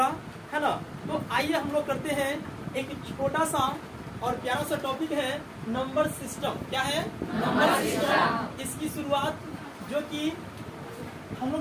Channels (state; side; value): identical; both; correlation 1.00